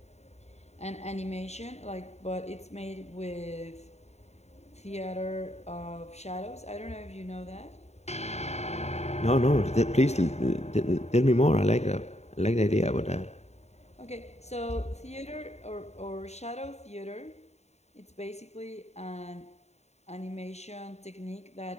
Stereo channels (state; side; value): late; right; 0.32 ms